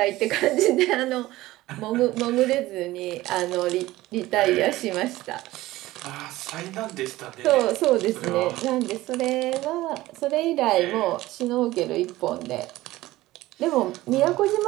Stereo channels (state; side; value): quieter; left; 17.3 dB